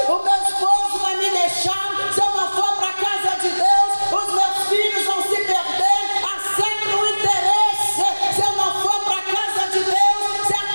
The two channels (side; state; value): both; inverted; correlation -1.00